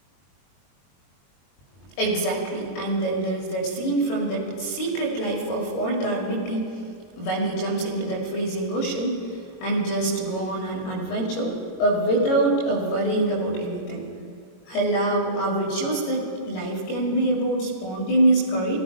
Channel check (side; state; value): right; late; 22 ms